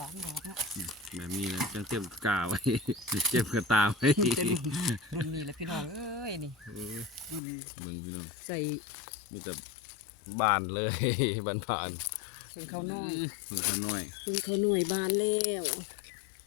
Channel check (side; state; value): right; drops out; at 7.4 s